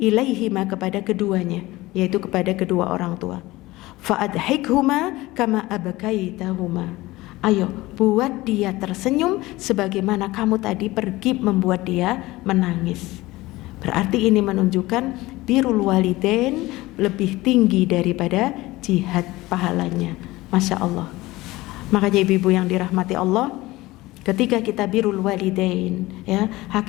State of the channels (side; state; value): right; quieter; 19.2 dB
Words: kepada keduanya, yaitu kepada kedua orang tua. Fa'adhikhuma kama abakaitahuma. Ayo, buat dia tersenyum sebagaimana kamu tadi pergi membuat dia menangis. Berarti ini menunjukkan birrul walidain lebih tinggi daripada jihad pahalanya. Masya Allah. Makanya ibu-ibu yang dirahmati Allah, ketika kita birrul walidain, ya,